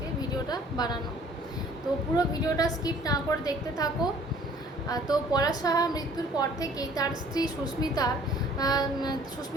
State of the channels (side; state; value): both; normal; correlation 0.54